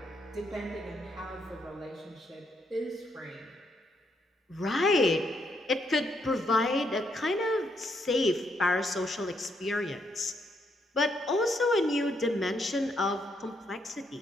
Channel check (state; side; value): normal; both; correlation 0.76